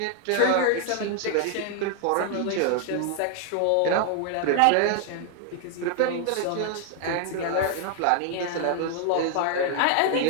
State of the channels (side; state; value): both; different; correlation 0.00